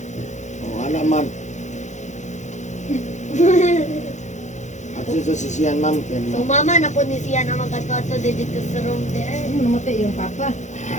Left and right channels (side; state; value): right; late; 0.34 ms